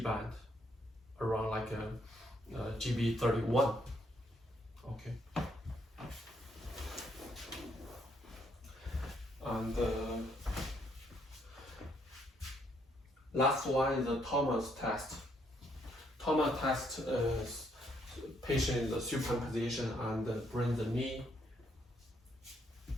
band around like a GB31. Okay. And last one is the Thomas test. Thomas test is patient in the supine position and bring the knee,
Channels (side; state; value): both; normal; correlation 0.71